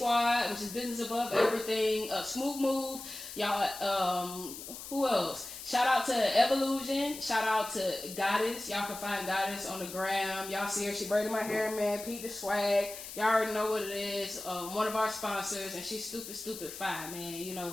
which is business above everything. Smooth Move, y'all. Who else? Shout out to Evolution. Shout out to Goddess. Y'all can find Goddess on the gram. Y'all see her. She braided my hair, man. Pete the Swag. Y'all already know what it is. One of our sponsors, and she's stupid fine, man. You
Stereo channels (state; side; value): noise; left; hiss, 11 dB below the sound